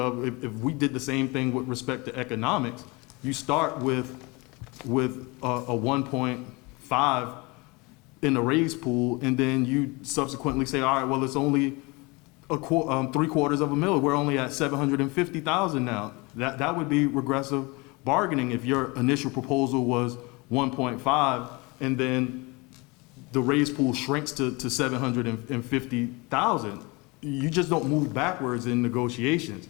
if we did the same thing with respect to economics. You start with a 1.5 in the raise pool, and then you subsequently say, all right, well, it's only $750,000. We're only at 750,000 now. That would be regressive bargaining if your initial proposal was 1.5, and then the raise pool shrinks to 750,000. You just don't move backwards in negotiations.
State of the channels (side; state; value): right; quieter; 26.3 dB